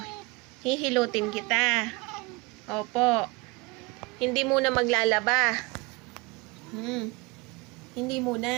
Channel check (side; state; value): left; quieter; 26.2 dB